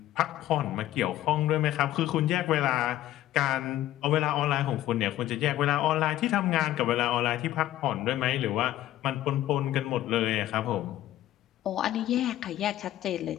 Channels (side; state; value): right; quieter; 13.8 dB